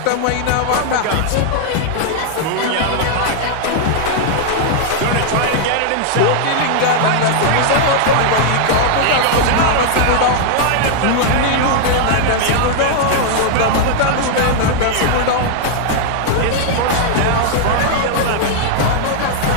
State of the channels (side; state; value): both; different; correlation 0.00